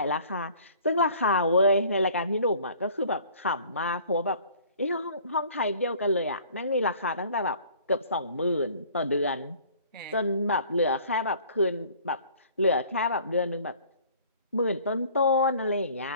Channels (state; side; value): inverted; both; correlation -0.52